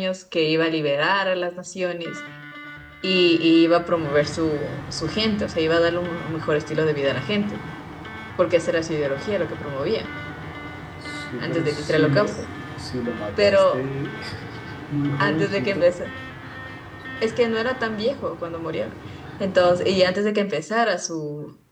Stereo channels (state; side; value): identical; both; correlation 1.00